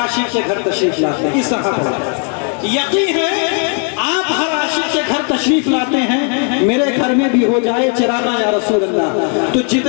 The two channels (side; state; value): right; quieter; 38.1 dB